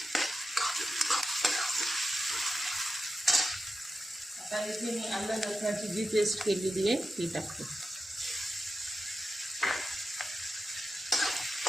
आता इथे मी आलं लसणाची जी पेस्ट केलेली आहे ती टाकते.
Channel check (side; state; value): both; normal; correlation 0.90